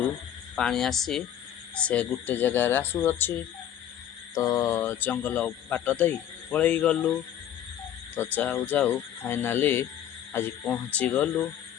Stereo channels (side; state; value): right; quieter; 10.6 dB